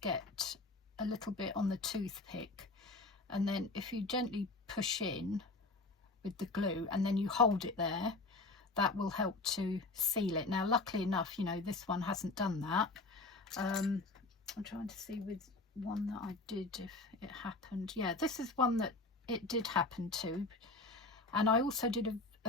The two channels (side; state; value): right; quieter; 3.3 dB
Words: get a little bit on the toothpick, and then if you gently push in with the glue and then you hold it there, that will help to seal it. Now luckily enough, you know, this one hasn't done that. I'm trying to see with one that I did if it happened. Yeah, this is one that it did happen to, and I also did